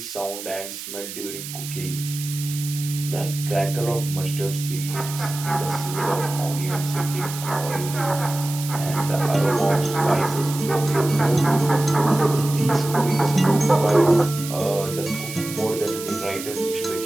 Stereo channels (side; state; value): right; noise; hiss, 10 dB below the sound